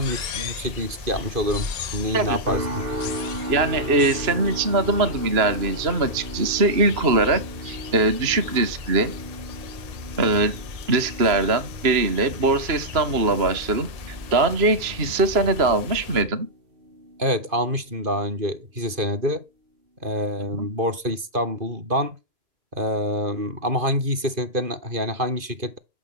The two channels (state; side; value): late; left; 2.9 ms